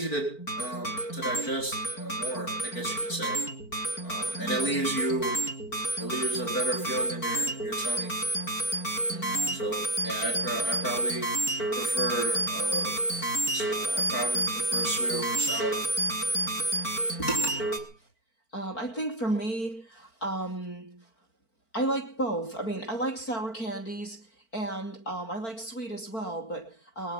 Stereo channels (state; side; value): late; right; 4.5 ms